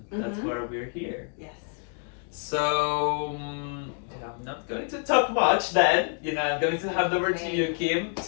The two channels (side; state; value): right; quieter; 38.0 dB